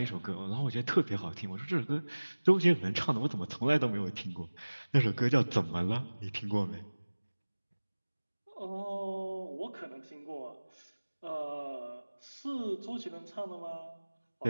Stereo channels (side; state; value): both; inverted; correlation -1.00